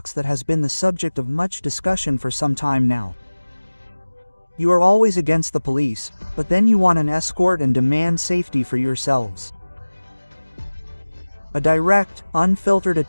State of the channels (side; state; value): both; inverted; correlation -1.00